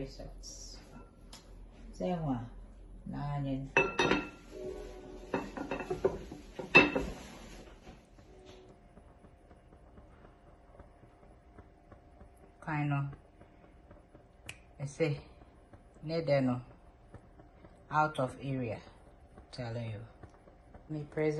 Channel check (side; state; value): both; identical; correlation 1.00